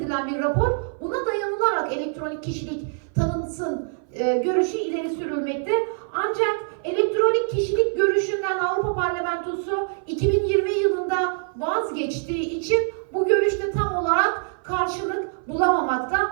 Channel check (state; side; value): silent; left; 57 dB below the other